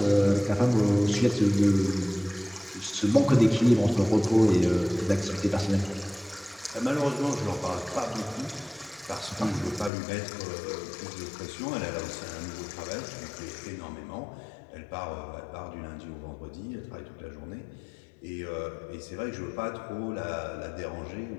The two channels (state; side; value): drops out; right; at 9.9 s